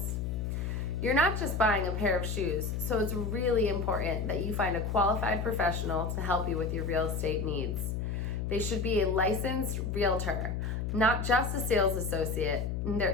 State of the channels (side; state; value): left; noise; hum, 2 dB below the sound